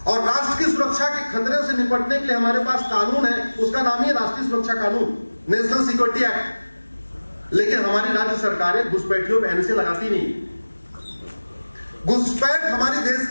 और राष्ट्र की सुरक्षा के खतरे से निपटने के लिए हमारे पास कानून है, उसका नाम ही राष्ट्रीय सुरक्षा कानून, नेशनल सिक्योरिटी एक्ट। लेकिन हमारी राज्य सरकारें घुसपैठियों पर NSA लगाती नहीं। घुसपैठ हमारे देश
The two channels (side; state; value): both; inverted; correlation -1.00